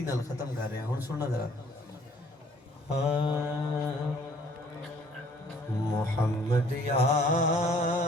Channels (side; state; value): both; normal; correlation 0.58